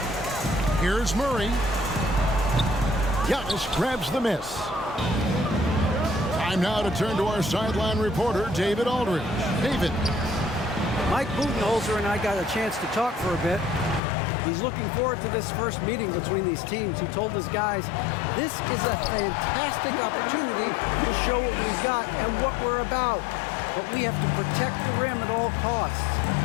Here's Murray. Giannis grabs the miss. Time now to turn to our sideline reporter, David Aldridge. David. Mike Budenholzer and I got a chance to talk for a bit. He's looking forward to this first meeting between these teams. He told his guys, this is a fantastic opportunity to show what we've got and what we're about. But we have to protect the rim at all costs,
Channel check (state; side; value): drops out; right; at 14.0 s